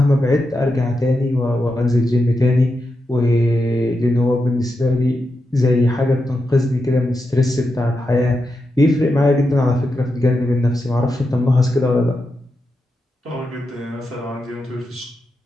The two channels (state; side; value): normal; both; correlation 0.87